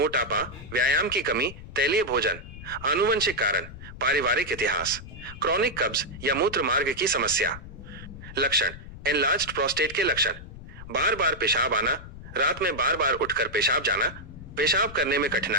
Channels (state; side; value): noise; left; rumble, 14 dB below the sound